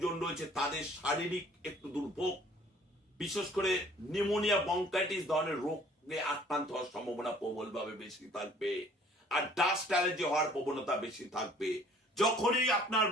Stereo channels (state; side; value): normal; both; correlation 0.55